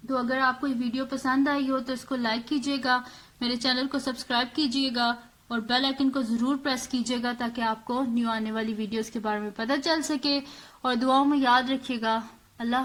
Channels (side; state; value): both; identical; correlation 1.00